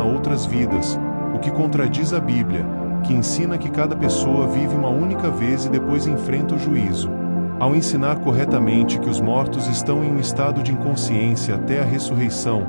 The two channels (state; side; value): inverted; both; correlation -1.00